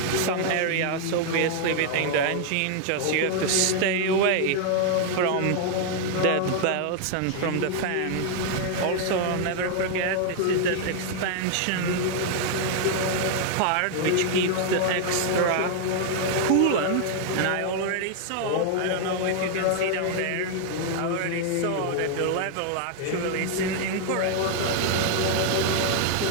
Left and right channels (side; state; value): both; different; correlation 0.00